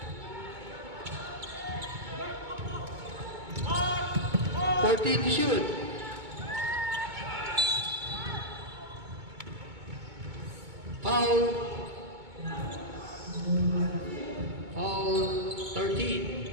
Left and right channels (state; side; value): late; left; 2.2 ms